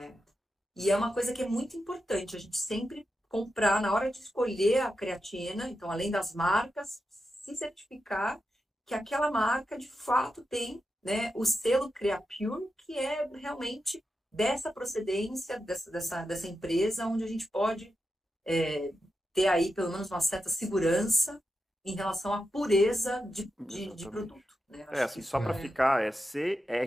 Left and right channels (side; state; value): both; normal; correlation 0.89